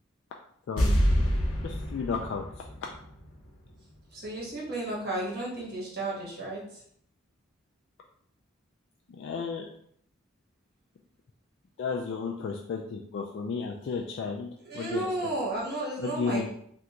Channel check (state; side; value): normal; both; correlation 0.62